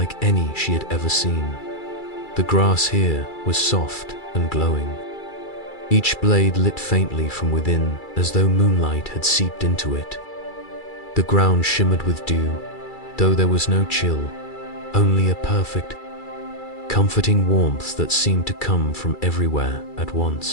any she had ever seen. The grass here was soft and glowing, each blade lit faintly from within as though moonlight had seeped into it. The ground shimmered with dew, though there was no chill, only a perfect, comforting warmth that seemed to come from everywhere at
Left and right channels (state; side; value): late; right; 2.3 ms